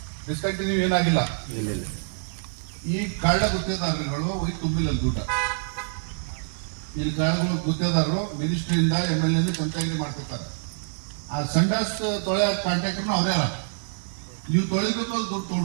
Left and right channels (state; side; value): silent; left; digital silence